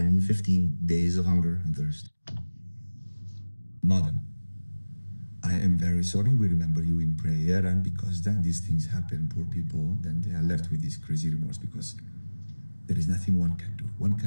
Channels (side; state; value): both; inverted; correlation -1.00